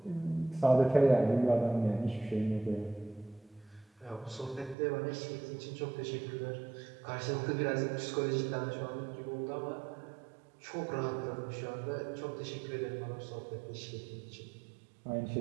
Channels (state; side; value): drops out; left; at 4.8 s